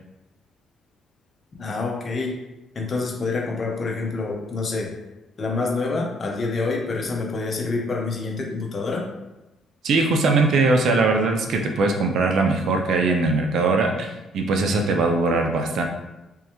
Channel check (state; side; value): normal; both; correlation 0.61